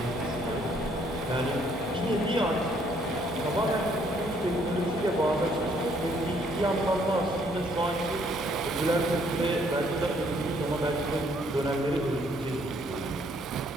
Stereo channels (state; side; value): normal; both; correlation 0.66